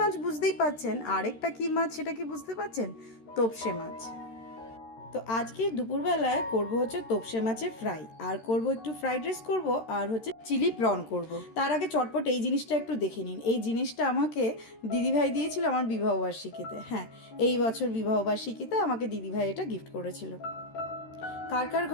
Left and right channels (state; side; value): late; right; 13 ms